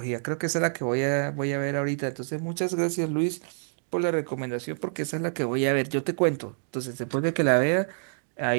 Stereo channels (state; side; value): silent; left; digital silence